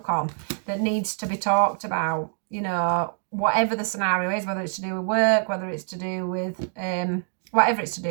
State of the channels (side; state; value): left; silent; 62 dB below the other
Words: on that needs to be talked about, you know, whatever the scenario is, whether it's to do with work, whether it's to do with whatever it's to